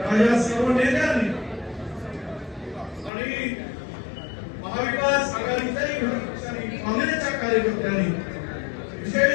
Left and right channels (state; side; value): drops out; right; at 3.1 s